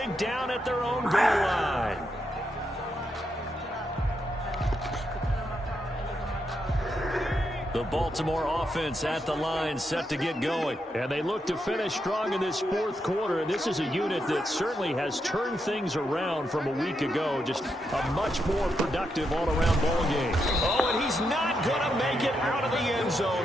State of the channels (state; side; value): normal; both; correlation 0.82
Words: down at their own goal line. The Baltimore offense at the line, set to get going. And they look to finish strong in this 4th quarter. And this is a unit that certainly has turned things around from a week ago. Just a much more productive all-around ball game. Oh, and he's not going to make it out of the end